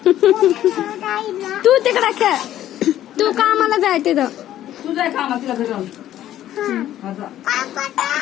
तू तिकडे खेळ. तू कामाला जाय तिथं. तू जाय कामा तिला घरी जाऊन.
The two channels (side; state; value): right; quieter; 12.5 dB